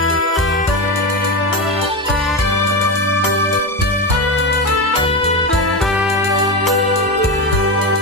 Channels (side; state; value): both; normal; correlation 0.16